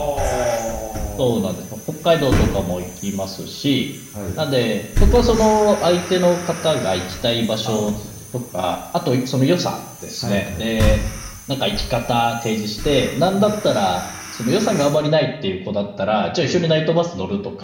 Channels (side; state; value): both; identical; correlation 1.00